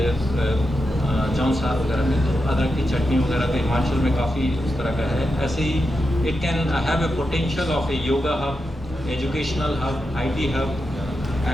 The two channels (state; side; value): normal; both; correlation 0.88